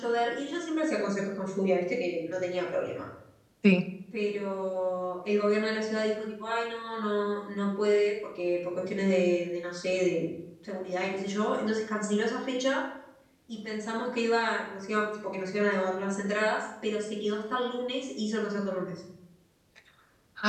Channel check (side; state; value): both; identical; correlation 1.00